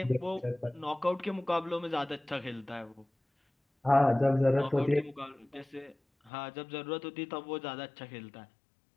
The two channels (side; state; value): right; drops out; at 6.3 s